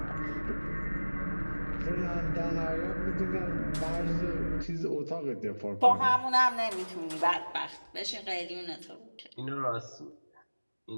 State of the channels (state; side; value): inverted; both; correlation -1.00